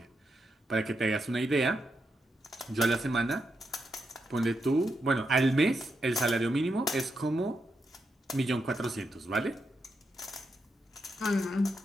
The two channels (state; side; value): normal; both; correlation 0.84